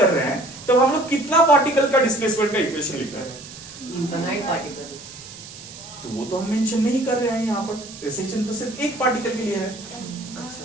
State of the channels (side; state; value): right; noise; hiss, 15 dB below the sound